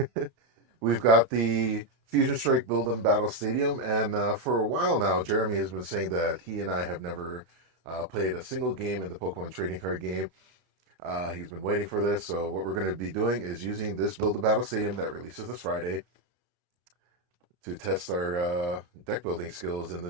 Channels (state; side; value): late; left; 32 ms